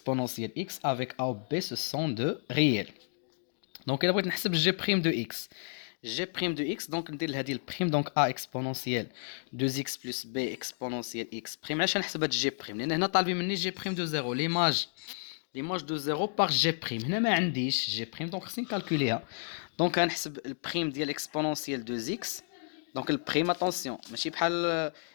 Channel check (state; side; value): silent; right; 57 dB below the other